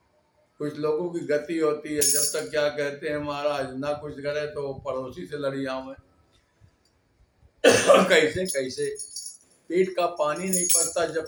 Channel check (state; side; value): identical; both; correlation 1.00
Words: कुछ लोगों की गति होती है, जब तक क्या कहते हैं महाराज ना कुछ करे तो पड़ोसी से लड़ी आऊं। कैसे कैसे पेट का पानी नहीं पड़ता जब